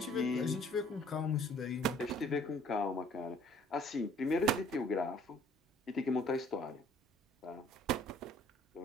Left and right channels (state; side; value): normal; both; correlation 0.57